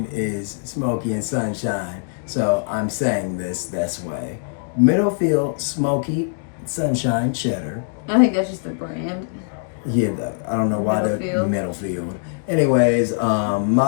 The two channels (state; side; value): silent; right; digital silence